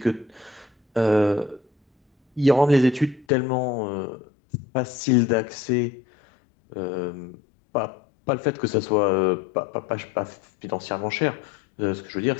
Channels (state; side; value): drops out; right; at 3.2 s